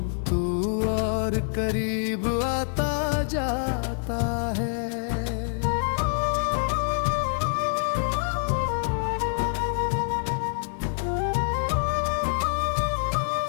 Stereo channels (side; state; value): right; silent; digital silence